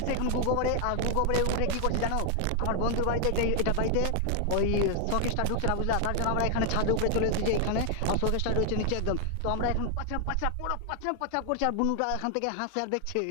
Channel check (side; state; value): both; different; correlation 0.00